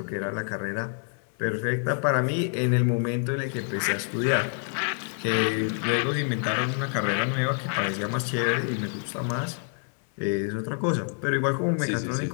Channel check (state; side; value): silent; right; 60 dB below the other